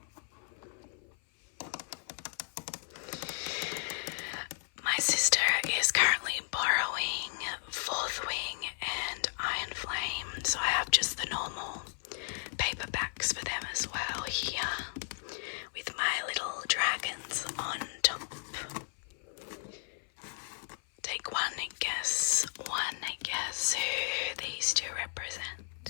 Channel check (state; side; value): silent; right; 55 dB below the other